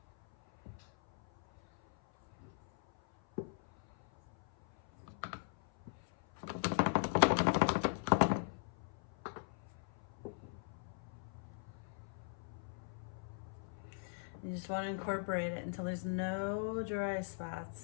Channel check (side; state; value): right; silent; 51 dB below the other